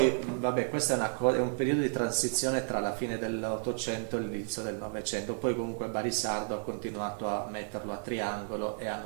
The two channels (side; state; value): left; silent; digital silence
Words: vabbè, questo è un periodo di transizione tra la fine dell'Ottocento e l'inizio del Novecento. Poi comunque Barisardo ha continuato a metterlo a triangolo e a